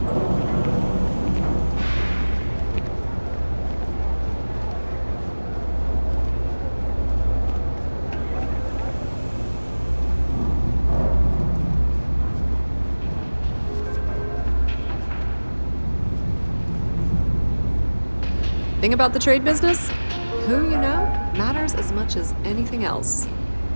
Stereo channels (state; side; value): inverted; both; correlation -1.00